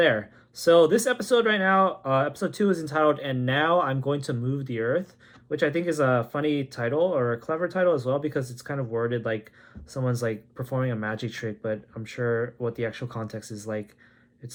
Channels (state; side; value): identical; both; correlation 1.00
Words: So this episode right now, episode 2 is entitled "And Now I'm Going to Move the Earth," which I think is a funny title, or a clever title as well, because it's kind of worded like someone's like performing a magic trick, but I'm sure what the actual context is like,